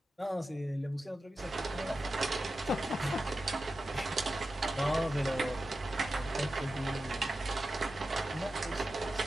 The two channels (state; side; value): normal; both; correlation 0.92